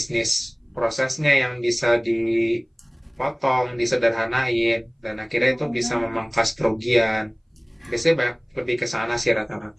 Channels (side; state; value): both; identical; correlation 1.00